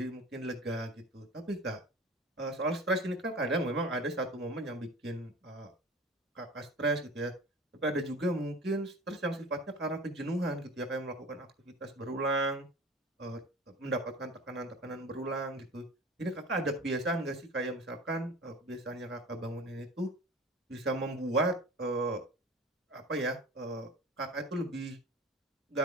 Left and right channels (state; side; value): normal; both; correlation 0.38